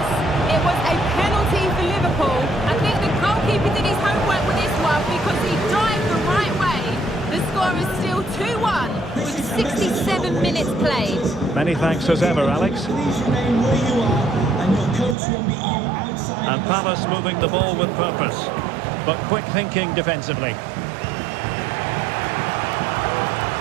it was a penalty for Liverpool. I think the goalkeeper did his homework with this one because he dived the right way. The score is still 2-1 with 67 minutes played. Many thanks as ever, Alex. And Palace moving the ball with purpose, but quick thinking defensively.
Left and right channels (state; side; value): drops out; left; at 15.2 s